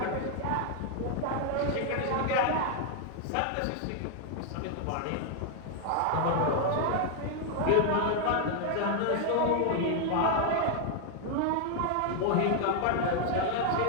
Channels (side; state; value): both; different; correlation 0.00